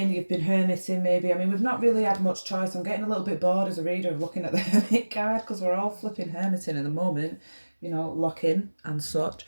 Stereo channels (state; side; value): inverted; both; correlation -1.00